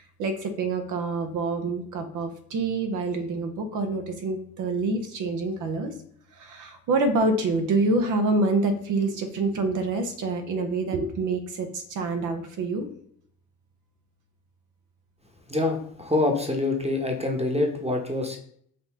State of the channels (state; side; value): normal; both; correlation 0.30